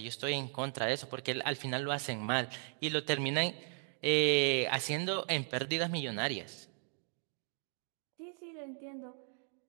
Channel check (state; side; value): silent; left; 53 dB below the other